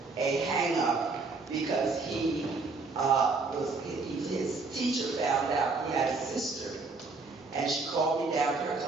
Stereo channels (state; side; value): quieter; left; 4.0 dB